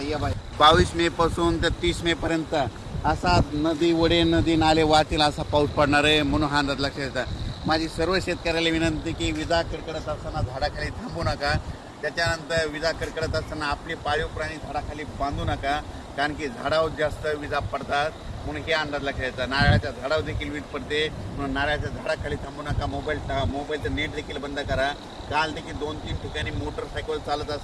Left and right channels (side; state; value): both; identical; correlation 1.00